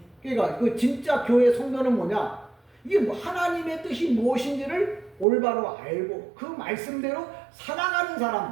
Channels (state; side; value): drops out; left; at 5.2 s